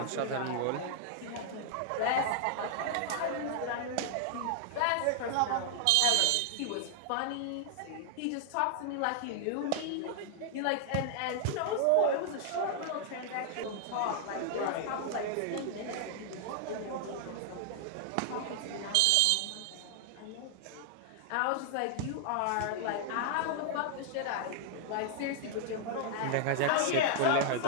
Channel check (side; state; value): both; different; correlation 0.00